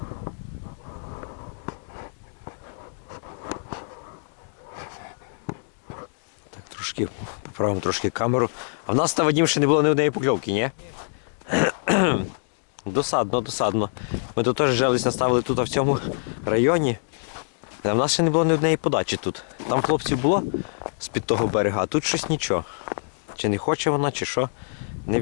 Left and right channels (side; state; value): right; silent; digital silence